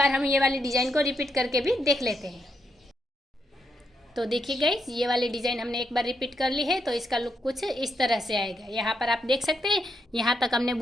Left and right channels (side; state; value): both; normal; correlation 0.80